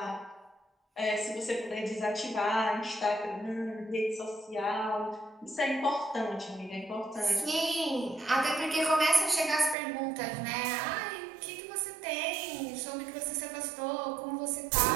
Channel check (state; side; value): drops out; left; at 9.8 s